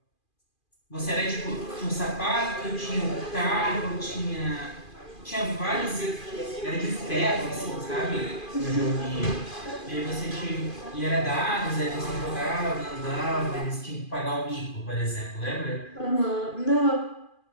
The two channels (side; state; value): right; late; 2.4 ms